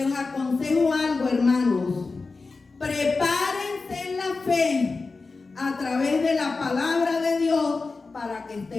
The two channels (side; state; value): right; quieter; 4.0 dB